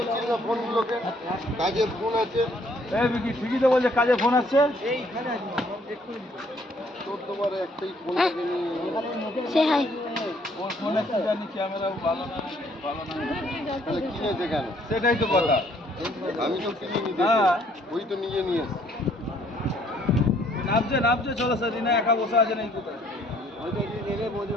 না ফোনগুলোকে, কাজের ফোন আছে। ঠিকই তো বলছে কাজে ফোন আসছে। তোর তোমার একটাই ফোন থেকে সে হাই ওর ফোন আসছে জানি ক্যামেরাও ভালো না তাহলে কিনেছে কেন? সেটাই তো কথা। আমি তো কিনে নিতে, হ্যাঁ। ওই তো নিজে নিয়ে এসছি। নামছে চলো স্যার, রিনা একা বসে আছে নাকি কোথায়?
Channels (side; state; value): both; normal; correlation 0.64